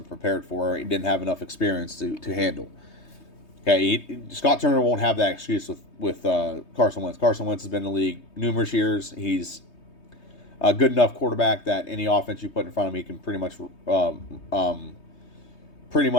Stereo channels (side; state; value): right; late; 3.2 ms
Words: prepared for. He didn't have enough experience to handle. Okay, Scott Turner won't have that excuse with Carson Wentz. Carson Wentz has been in the league numerous years. He's a good enough quarterback that any offense you put in front of him, he can pretty much